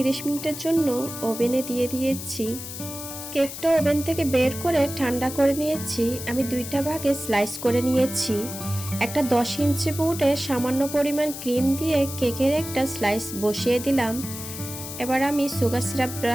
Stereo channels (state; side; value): noise; left; hiss, 9 dB below the sound